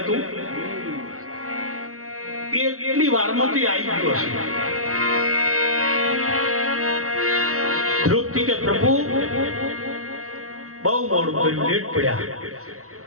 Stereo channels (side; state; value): left; late; 0.64 ms